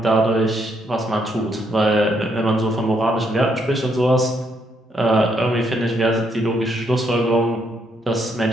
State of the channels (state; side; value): normal; both; correlation 0.74